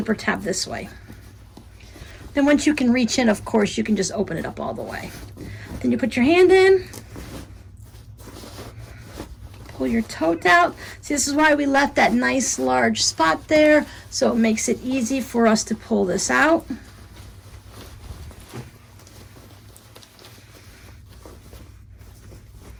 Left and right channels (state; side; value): identical; both; correlation 1.00